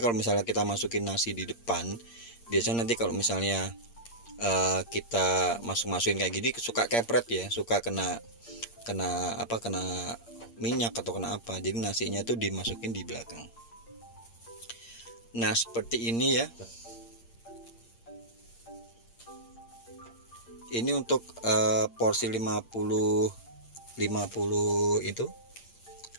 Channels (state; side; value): late; right; 8.7 ms